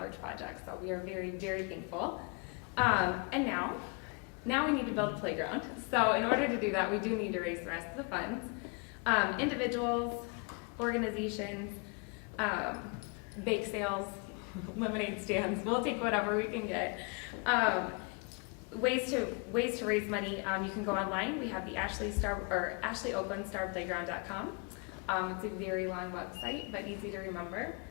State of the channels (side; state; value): right; quieter; 33.6 dB